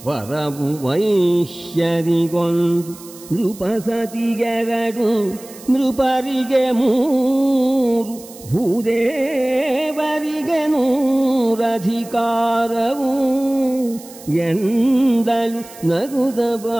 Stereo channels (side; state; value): right; noise; hiss, 19 dB below the sound